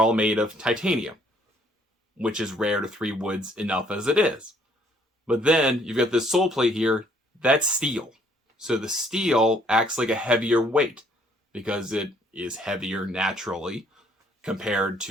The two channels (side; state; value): both; normal; correlation 0.64